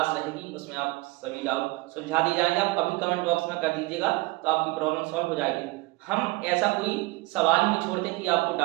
रहेगी, उसमें आप सभी डाउट सुलझा दिए जाएंगे। आप अभी कमेंट बॉक्स में कर दीजिएगा, तो आपकी प्रॉब्लम सॉल्व हो जाएगी। हम ऐसा कोई सवाल नहीं छोड़ते कि आपको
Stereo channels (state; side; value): quieter; left; 22.5 dB